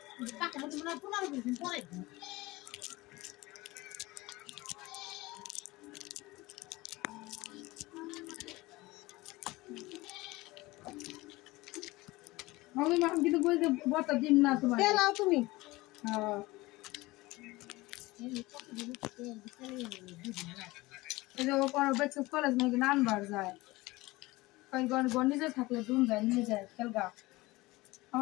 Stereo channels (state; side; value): quieter; right; 20.7 dB